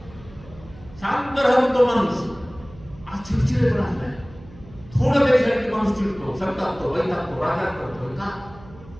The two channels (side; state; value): right; noise; hum, 20 dB below the sound